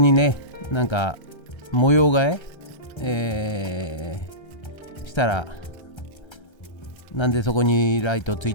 にねなんか模様替え、したらなんでそこにライトつい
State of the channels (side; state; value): right; late; 1.3 ms